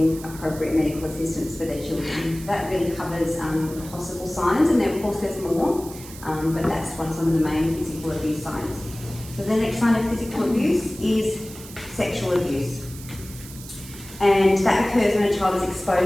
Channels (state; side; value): noise; right; hiss, 16 dB below the sound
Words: appropriate medical assistance for their children. That really covers possible signs, and then of course there's more, but that's some of the main physical abuse signs. So the next sign of physical abuse is sexual abuse. And that occurs when a child is